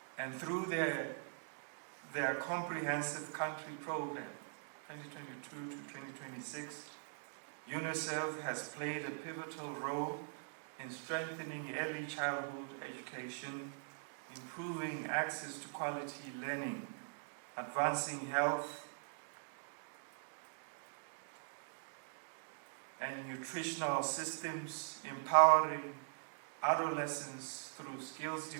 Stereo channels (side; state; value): left; silent; digital silence